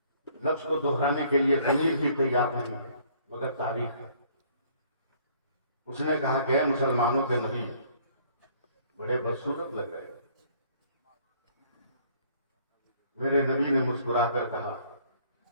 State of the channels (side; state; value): both; inverted; correlation -0.60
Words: لفظ کو دہرانے کے لیے ضمیر بھی تیار نہیں ہے مگر تاریخ ہے۔ اس نے کہا کہ اے مسلمانوں کے نبی، بڑے بدصورت لگ رہے ہیں۔ میرے نبی نے مسکرا کر کہا،